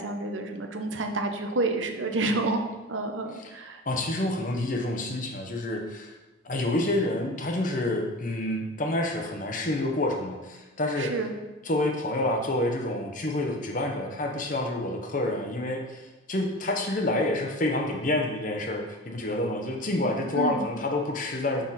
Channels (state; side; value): normal; both; correlation 0.32